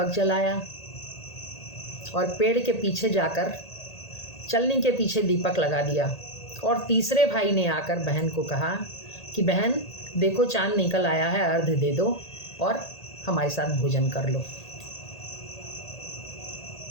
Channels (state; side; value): late; right; 1.8 ms